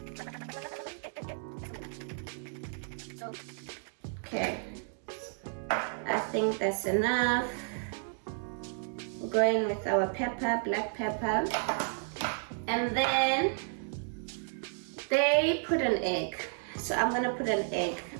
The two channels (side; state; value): left; silent; 56 dB below the other